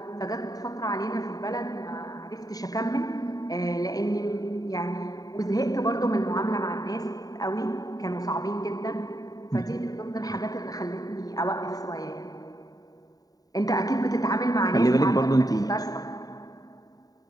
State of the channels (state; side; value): late; right; 0.18 ms